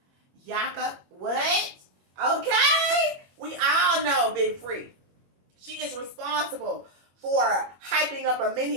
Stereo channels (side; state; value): left; late; 21 ms